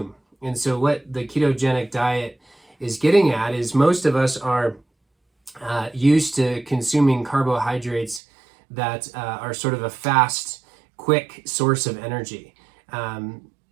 And so what the ketogenic diet is getting at is most of us are used to consuming carbohydrates that are sort of a fast, quick source of energy.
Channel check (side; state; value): left; drops out; at 8.2 s